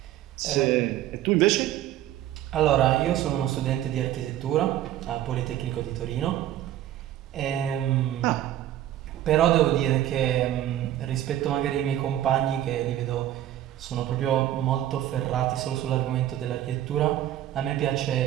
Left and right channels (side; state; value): left; quieter; 12.5 dB